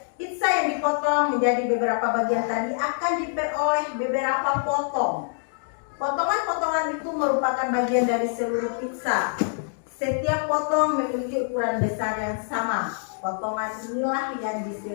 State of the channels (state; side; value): silent; right; digital silence